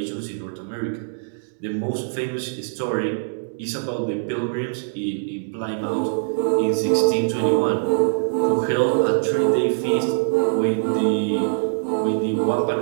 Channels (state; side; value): silent; left; digital silence